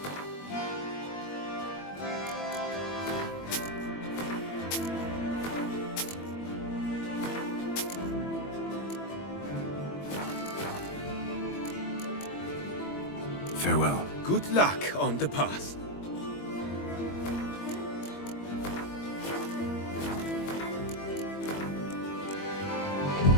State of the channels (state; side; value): late; right; 21 ms